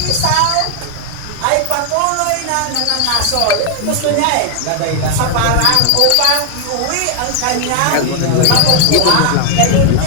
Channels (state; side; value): different; both; correlation 0.00